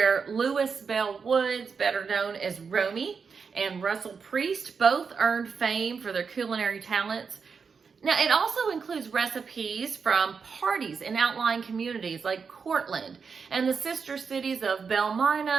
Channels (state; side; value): quieter; left; 5.6 dB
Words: Lewis Bell Woods, better known as Romy, and Russell Priest both earned fame for their culinary talents. Now, it also includes recipes from parties in outlying communities like Cortland and the sister cities of Belle